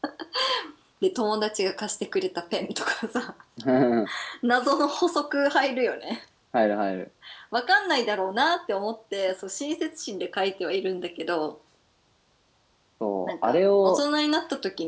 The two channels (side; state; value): both; identical; correlation 1.00